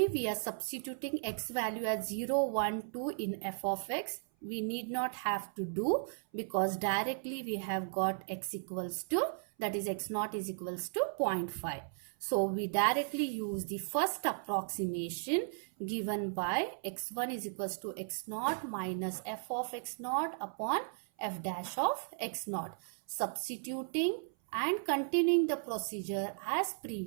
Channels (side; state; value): left; silent; 54 dB below the other